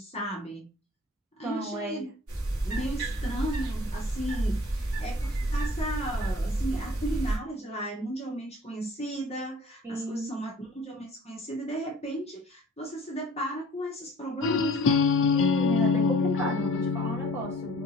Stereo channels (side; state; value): both; normal; correlation 0.51